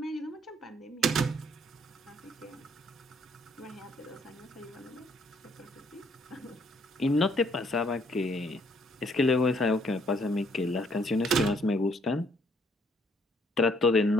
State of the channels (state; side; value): normal; both; correlation 0.66